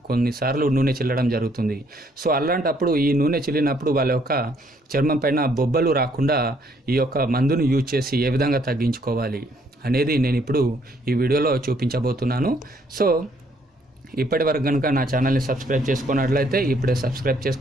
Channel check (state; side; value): normal; both; correlation 0.67